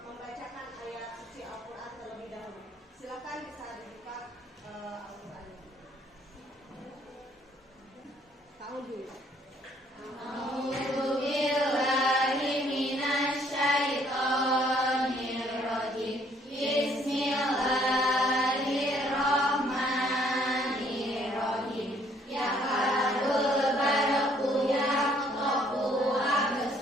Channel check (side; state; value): both; normal; correlation 0.64